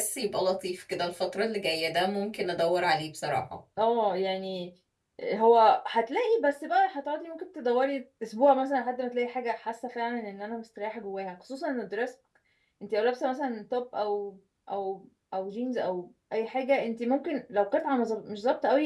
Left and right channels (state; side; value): identical; both; correlation 1.00